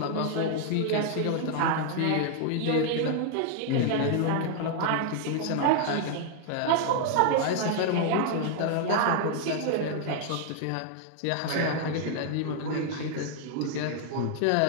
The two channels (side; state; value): both; different; correlation 0.00